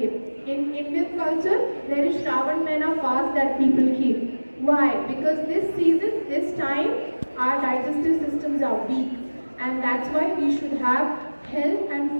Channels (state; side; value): inverted; both; correlation -1.00